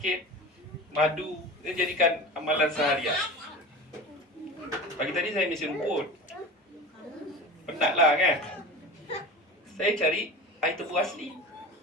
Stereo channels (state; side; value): normal; both; correlation 0.32